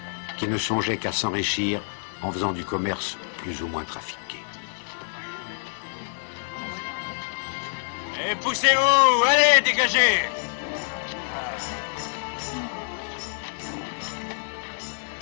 qui ne songeaient qu'à s'enrichir en faisant du commerce plus ou moins trafiqué. Et poussez-vous, allez, dégagez!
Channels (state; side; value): silent; right; 61 dB below the other